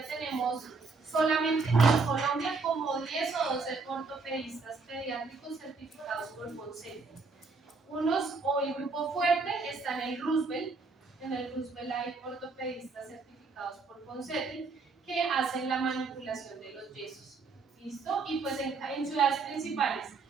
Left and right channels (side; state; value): left; quieter; 4.2 dB